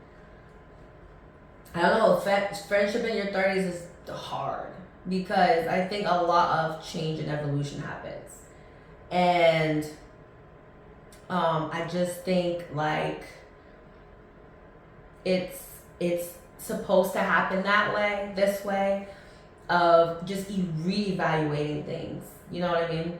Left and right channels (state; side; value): identical; both; correlation 1.00